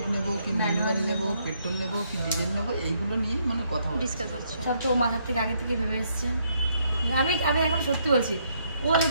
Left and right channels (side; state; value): both; inverted; correlation -0.72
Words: নেব কি ম্যানুয়াল নেব, পেট্রোল নেব কি ডিজেল নেব, এইগুলো নিয়ে মানে কথা হচ্ছে। ডিসকাস হচ্ছে। সব তো মাথার থেকে আগে থেকে ভেবে এসছে। আমি এখন সত্যি বলছি, ও